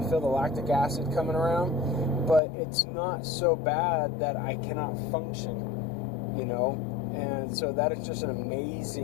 feel the lactic acid coming around, but it's not so bad that I cannot function, And so that is just an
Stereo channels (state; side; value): drops out; right; at 2.4 s